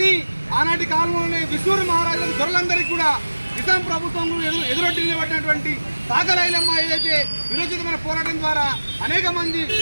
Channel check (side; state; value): both; inverted; correlation -1.00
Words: ఆనాటి కాలంలోనే విష్ణూరు మహారాజులకు దొరలందరికీ కూడా నిజాం ప్రభుత్వం ఎదురొడ్డి నిలబడినటువంటి చాకలి ఐలమ్మ ఏదైతే విరోచితమైన పోరాటం ద్వారా అనేక మంది